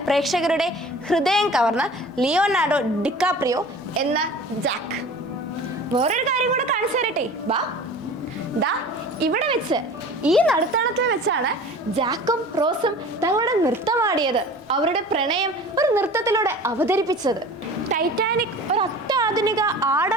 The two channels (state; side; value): normal; both; correlation 0.41